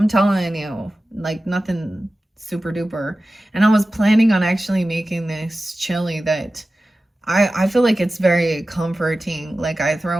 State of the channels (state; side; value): normal; both; correlation 0.95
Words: telling you, like nothing super duper. And I was planning on actually making this chili that I feel like it's very comforting. Like I